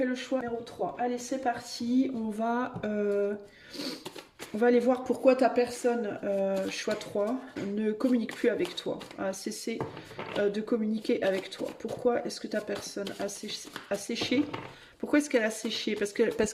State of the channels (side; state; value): both; identical; correlation 1.00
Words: le choix numéro 3. Allez, c'est parti. On va aller voir pourquoi ta personne, choix 3, ne communique plus avec toi, a cessé de communiquer avec toi. Pourquoi est-ce que ta personne a séché? Pourquoi est-ce qu'elle a séché? Parce